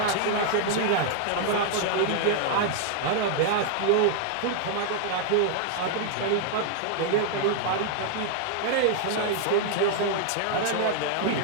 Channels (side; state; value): both; different; correlation 0.00